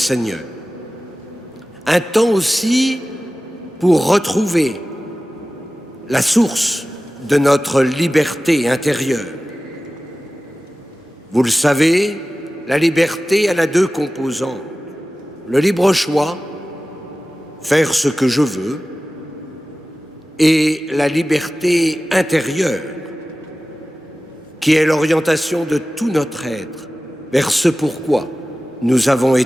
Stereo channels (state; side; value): normal; both; correlation 0.96